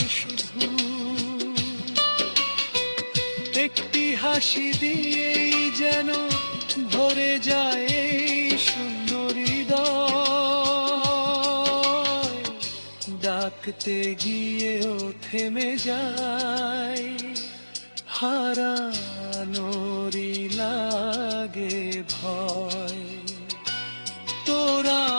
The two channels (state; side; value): inverted; both; correlation -1.00